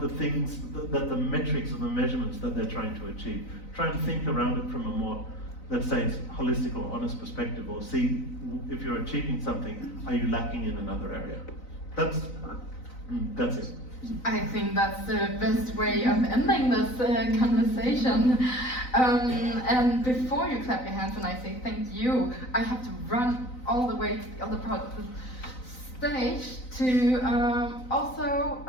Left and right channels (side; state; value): right; late; 3.9 ms